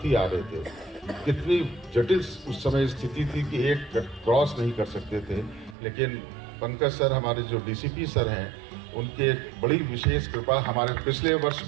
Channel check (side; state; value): left; drops out; at 5.8 s